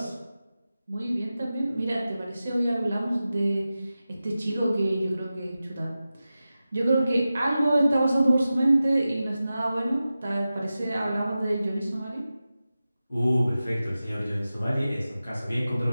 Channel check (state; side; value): inverted; both; correlation -0.94